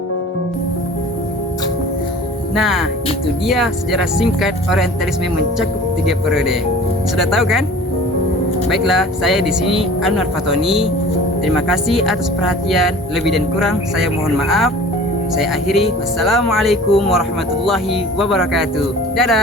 Nah, itu dia sejarah singkat Orientalisme mencakup 3 periode. Sudah tahu kan? Baiklah, saya di sini Anwar Fatoni. Terima kasih atas perhatian. Lebih dan kurang saya mohon maaf. Saya akhiri. Wassalamualaikum warahmatullahi wabarakatuh.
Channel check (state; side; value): normal; both; correlation 0.44